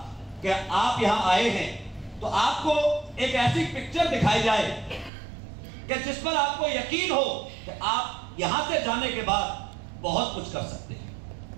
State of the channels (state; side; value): drops out; left; at 5.1 s